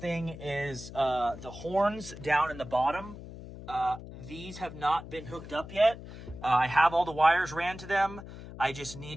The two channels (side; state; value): left; noise; hum, 13 dB below the sound